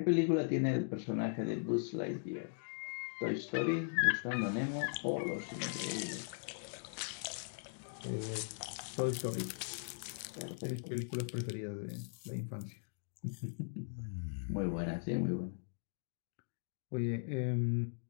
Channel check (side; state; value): right; silent; digital silence